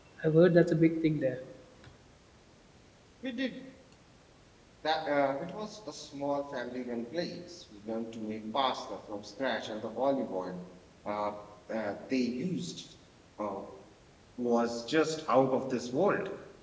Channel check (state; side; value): identical; both; correlation 1.00